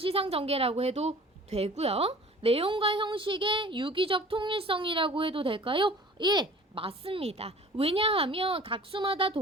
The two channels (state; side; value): normal; both; correlation 0.46